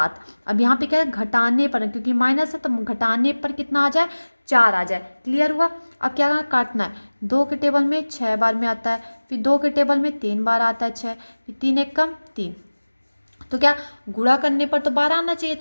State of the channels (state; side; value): inverted; both; correlation -1.00